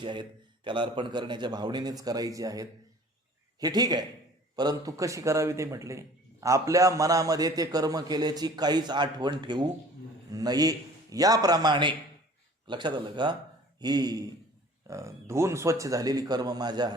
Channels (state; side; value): normal; both; correlation 0.48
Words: आहेत, त्याला अर्पण करण्याच्या भावनेनेच करायची आहेत, हे ठीक आहे. परंतु कशी करावी ते म्हटले, आपल्या मनामध्ये ते कर्म केल्याची काहीच आठवण ठेवू नये. याप्रमाणे, लक्षात आलं का? ही धुवून स्वच्छ झालेली कर्म माझ्या